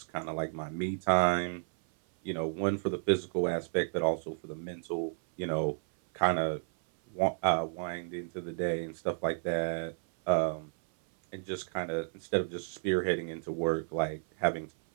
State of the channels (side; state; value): left; silent; 56 dB below the other